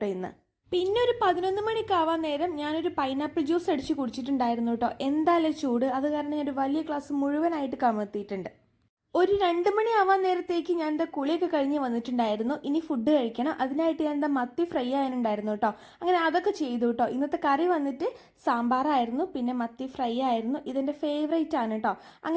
ഇന്ന്. പിന്നെ ഒരു 11 മണിക്കാവാൻ നേരം ഞാനൊരു പൈനാപ്പിൾ ജ്യൂസ് അടിച്ച് കുടിച്ചിട്ടുണ്ടായിരുന്നു കേട്ടോ. എന്തായാലും ചൂട്, അത് കാരണം ഞാനൊരു വലിയ ഗ്ലാസ് മുഴുവനായിട്ട് കമഴ്ത്തിയിട്ടുണ്ട്. ഒരു 2 മണിയാവാൻ നേരത്തേക്ക് ഞാൻ എന്താ കുളിയൊക്കെ കഴിഞ്ഞ് വന്നിട്ടുണ്ടായിരുന്നു. ഇനി ഫുഡ് കഴിക്കണം. അതിനായിട്ട് ഞാൻ എന്താ മത്തി ഫ്രൈ ആയാനുണ്ടായിരുന്നു കേട്ടോ. അങ്ങനെ അതൊക്കെ ചെയ്തു കേട്ടോ. ഇന്നത്തെ കറി വന്നിട്ട് സാമ്പാറായിരുന്നു, പിന്നെ മത്തി ഫ്രൈ ആയിരുന്നു. ഇതെന്റെ ഫേവറേറ്റ് ആണ് കേട്ടോ.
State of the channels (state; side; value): identical; both; correlation 1.00